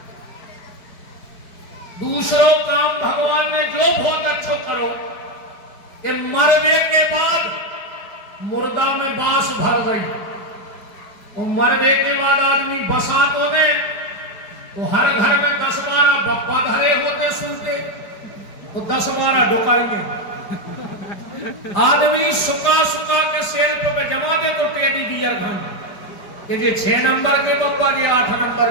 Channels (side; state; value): right; late; 5.0 ms